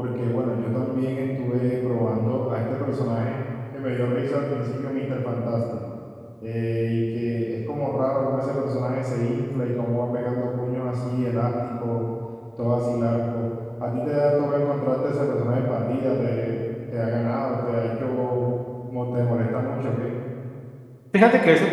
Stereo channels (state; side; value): identical; both; correlation 1.00